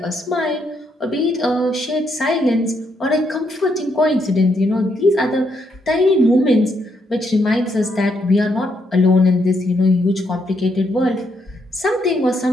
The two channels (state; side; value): normal; both; correlation 0.76